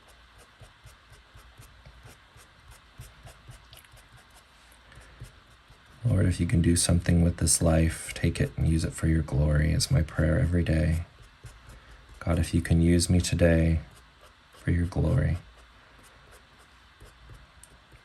Lord, if you can do something with this life, take it and use it for your glory is my prayer every day. God, if you can use me today for your glory.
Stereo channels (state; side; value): identical; both; correlation 1.00